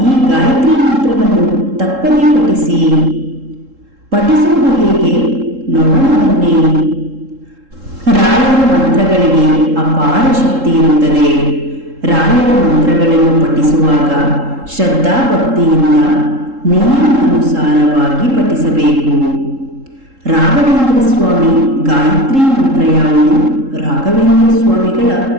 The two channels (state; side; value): late; left; 3.7 ms